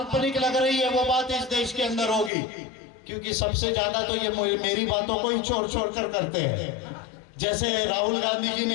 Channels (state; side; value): drops out; right; at 2.3 s